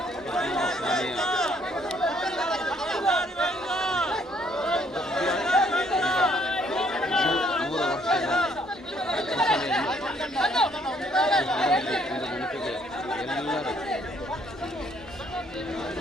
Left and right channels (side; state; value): both; normal; correlation 0.66